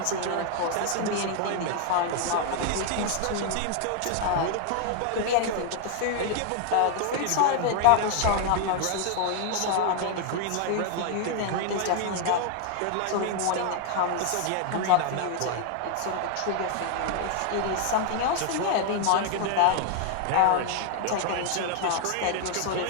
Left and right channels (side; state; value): both; different; correlation 0.00